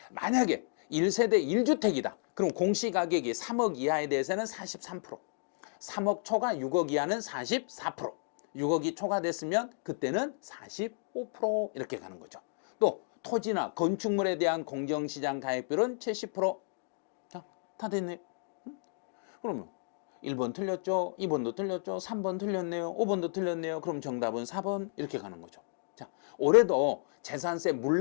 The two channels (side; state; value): right; silent; digital silence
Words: 만약에 1세대 1주택이다. 그럼 공시가격이 3억 이하에 대해서는 43%. 3억 초과 6억 이하는 44%. 6억이 초과됐으면 그때는 45% 이렇게 가는 거죠. 또 토지나 건축물에 대한 공정시장 가액비율은 70%. 자, 다 됐네. 그러면 1번 틀렸죠. 2번도 틀렸죠. 3번 틀렸네요. 5번도 틀렸네요. 그럼 정답은 4번 이렇게 가는 거죠. 자, 올해도 재산세